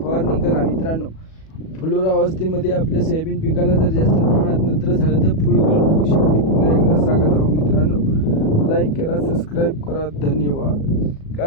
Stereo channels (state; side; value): late; right; 37 ms